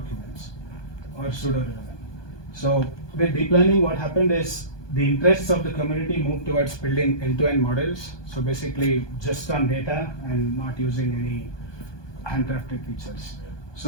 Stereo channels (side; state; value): right; late; 1.2 ms